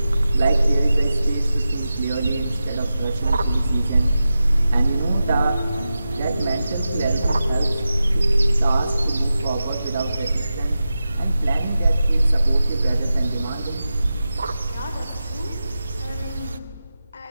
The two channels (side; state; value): both; inverted; correlation -0.92